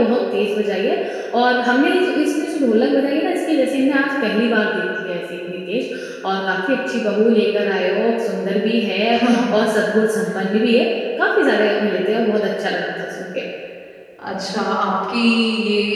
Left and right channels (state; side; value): identical; both; correlation 1.00